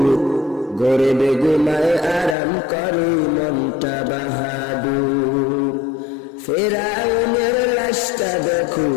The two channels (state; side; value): drops out; right; at 2.4 s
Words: গরিবে ঘুমায় আরাম করে মনটা বাহাদুর। ফেরাউনের লাশটা দেখো